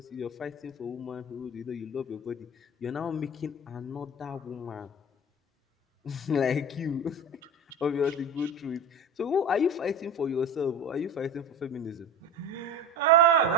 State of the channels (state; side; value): normal; both; correlation 0.32